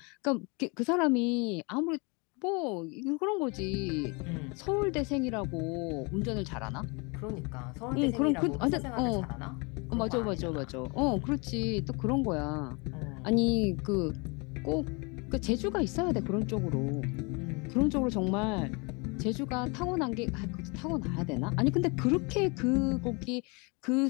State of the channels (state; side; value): quieter; right; 30.2 dB